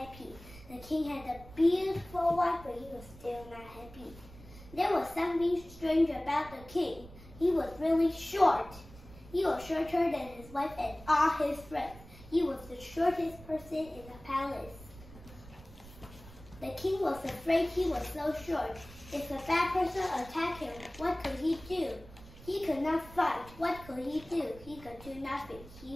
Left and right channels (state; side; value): noise; right; rumble, 18 dB below the sound